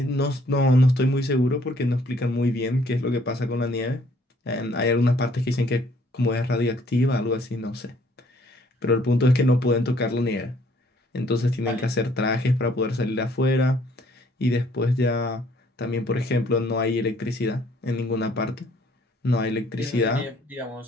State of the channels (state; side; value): normal; both; correlation 0.62